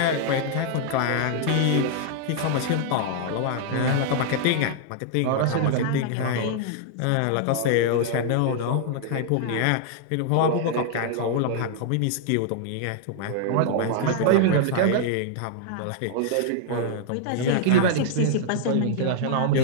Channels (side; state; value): both; different; correlation -0.01